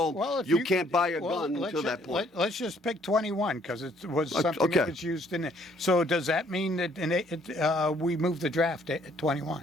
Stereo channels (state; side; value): normal; both; correlation 0.64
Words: Well, if you can't buy a gun let's until ju- that point. Let's just pick 21 because it was something okay. that was used in it. So does that mean that we move the draft at